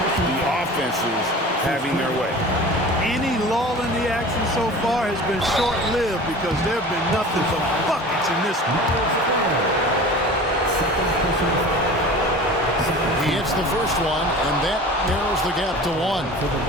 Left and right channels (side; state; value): both; normal; correlation 0.39